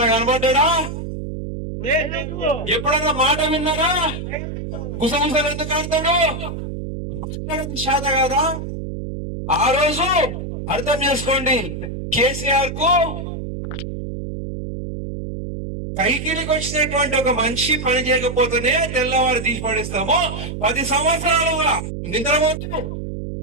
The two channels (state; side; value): noise; right; hum, 6 dB below the sound